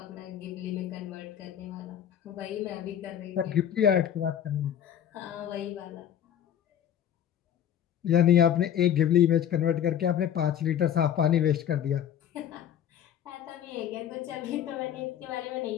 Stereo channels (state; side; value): quieter; right; 9.8 dB